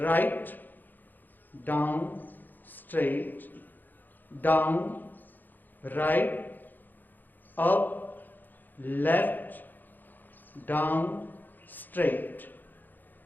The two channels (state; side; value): late; right; 0.087 ms